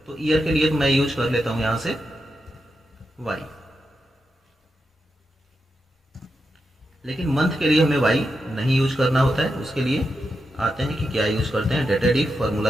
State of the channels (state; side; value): normal; both; correlation 0.87